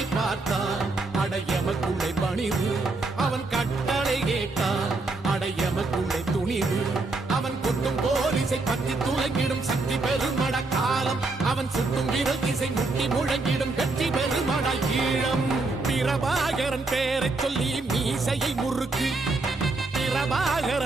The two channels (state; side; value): quieter; left; 3.4 dB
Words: பார்த்தான் அடையமக்குள்ளே பணிவு அவன் கட்டளை கேட்டான் அடையமக்குள்ளே துணிவு அவன் கொத்தும் போலீசை பற்றி துளைங்கிடும் சக்தி பெருமட காலம் அவன் சுட்டும் விரல் திசை முட்டி முழங்கிடும் வெற்றி பெருமட ஈழம் பிரபாகரன் பேரை சொல்லி மீசையை முறுக்கு